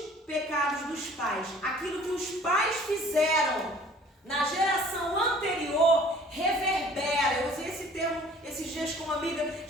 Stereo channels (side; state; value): both; normal; correlation 0.51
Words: pecados dos pais. Aquilo que os pais fizeram na geração anterior reverbera. Eu usei esse termo esses dias com uma amiga.